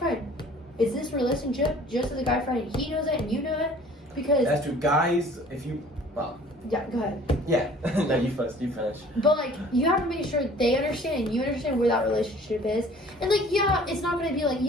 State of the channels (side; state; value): both; normal; correlation 0.51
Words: is this relationship just as a guy friend? He knows it and you know it because that's true. Guys, yeah, go ahead. Yeah, no, you first. You finish. But like you have to make sure they understand and you understand where that relationship is, and like it's not gonna be like